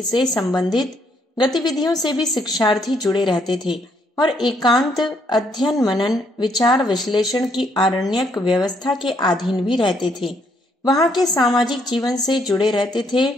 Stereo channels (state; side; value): normal; both; correlation 0.71